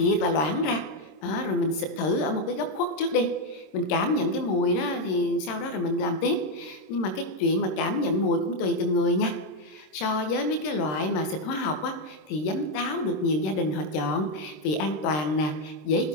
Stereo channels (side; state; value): right; late; 27 ms